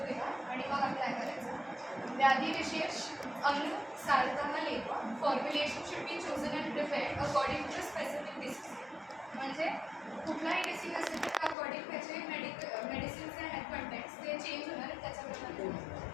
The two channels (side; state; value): right; drops out; at 11.6 s